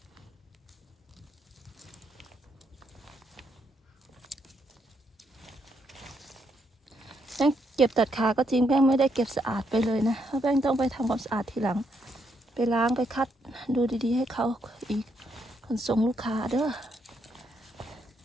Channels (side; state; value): both; normal; correlation 0.76